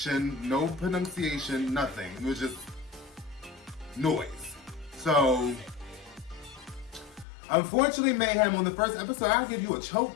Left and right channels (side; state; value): right; drops out; at 7.2 s